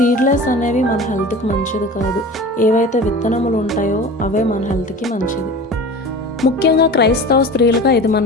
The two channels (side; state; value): both; normal; correlation 0.36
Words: అనేవి మన హెల్త్కి మంచిది కాదు. ఏవైతే విత్తనములు ఉంటాయో అవే మన హెల్త్కి మంచిది. ముఖ్యంగా క్రైస్తవ స్త్రీలుగా ఇది మన